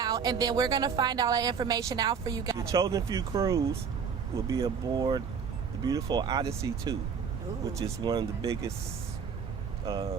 and then we're going to find all that information out for you guys. The Chosen Few cruise will be aboard the beautiful Odyssey 2, which is one of the biggest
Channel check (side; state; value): left; quieter; 6.5 dB